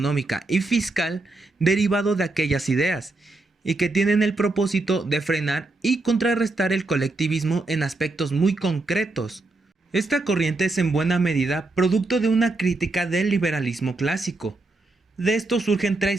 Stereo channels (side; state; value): left; quieter; 3.1 dB